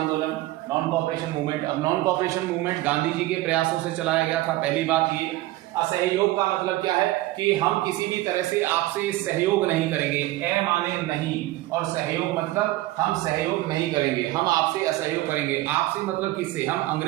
नॉन कॉपरेशन मूवमेंट। अब non cooperation movement Gandhi ji के प्रयासों से चलाया गया था, पहली बात ये। असहयोग का मतलब क्या है कि हम किसी भी तरह से आपसे सहयोग नहीं करेंगे। ए माने नहीं, और सहयोग मतलब हम सहयोग नहीं करेंगे, हम आपसे असहयोग करेंगे। आपसे मतलब किससे? हम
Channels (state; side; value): quieter; left; 17.3 dB